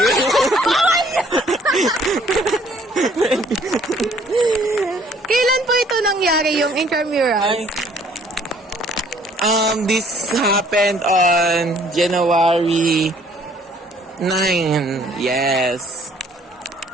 Kailan po ito nangyari yung intramurals? This happened on January 9. Yes.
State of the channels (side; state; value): both; normal; correlation 0.60